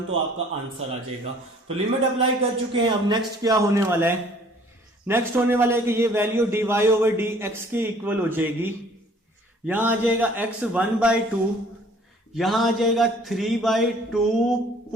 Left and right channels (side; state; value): both; normal; correlation 0.55